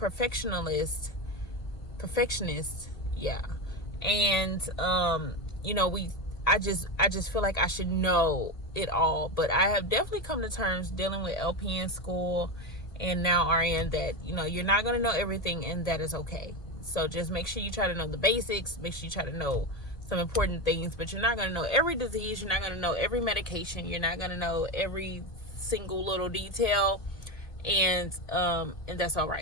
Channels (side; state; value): right; late; 2.1 ms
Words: Yeah. And, you know, I just feel like I should know it all, but I have definitely come to terms dealing with LPN school and now RN that, you know, you're not going to know everything, and that is okay. So just make sure you try to know the basics, make sure you try to know some important things, but you're not going to know every disease, you're not going to know every medication, you're not going to know every single little detail, and that's all